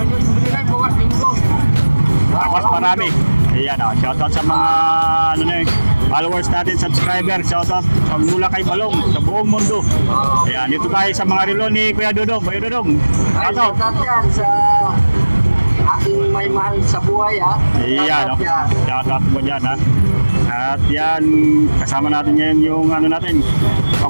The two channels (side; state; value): both; inverted; correlation -1.00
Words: Tapos marami. Ayan, oh. Shoutout sa mga followers natin, subscriber. Shoutout mula kay Balong sa buong mundo. Ayan, dito tayo sa mga relo ni Kuya Dudong. Kuya Dudong, shoutout. Shoutout yan sa aking may mahal sa buhay, ha? Iyan, no? Shoutout mo dyan, ha? At yan, kasama natin ngayon yung ano natin.